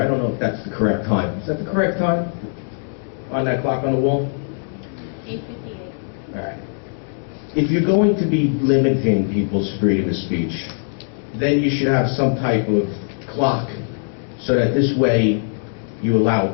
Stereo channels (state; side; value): silent; right; digital silence